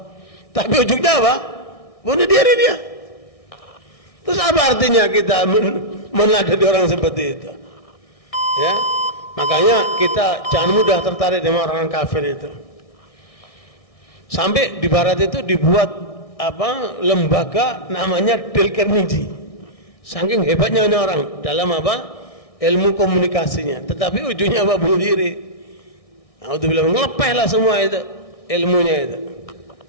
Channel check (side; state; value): right; late; 1.6 ms